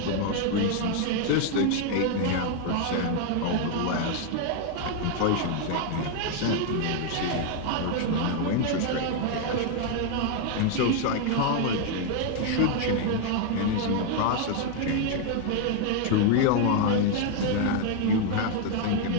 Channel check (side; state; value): both; different; correlation 0.00